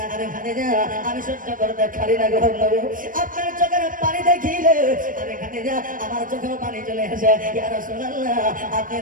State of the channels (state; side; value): late; left; 0.40 ms